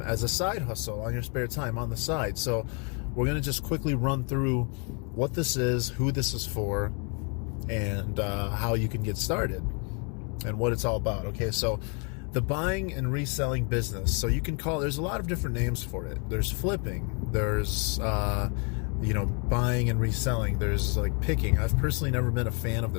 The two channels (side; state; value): right; quieter; 36.8 dB